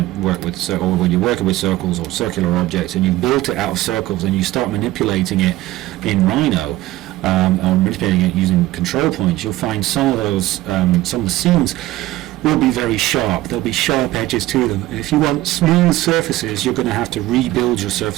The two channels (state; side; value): quieter; left; 16.6 dB